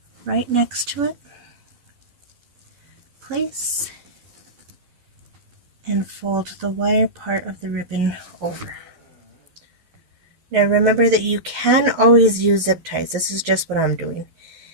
right next to it. Place and fold the wire part of the ribbon over. Now remember that you can always use zip ties. This is just what I'm doing.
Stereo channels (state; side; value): late; left; 11 ms